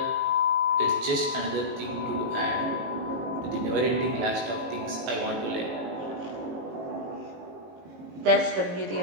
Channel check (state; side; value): late; left; 18 ms